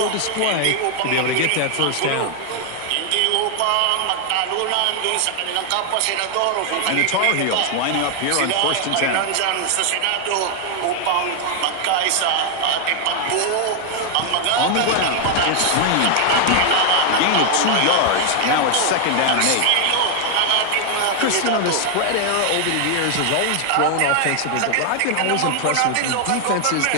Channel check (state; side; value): different; both; correlation 0.00